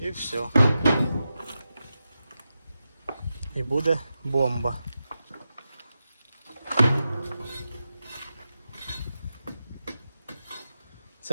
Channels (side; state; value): both; inverted; correlation -0.90